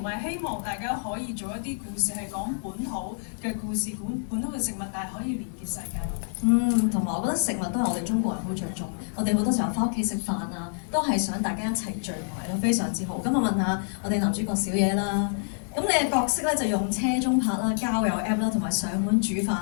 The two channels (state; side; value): silent; right; digital silence